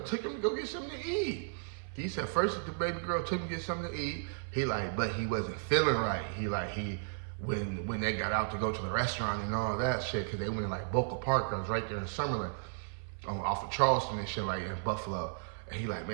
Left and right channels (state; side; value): silent; left; 55 dB below the other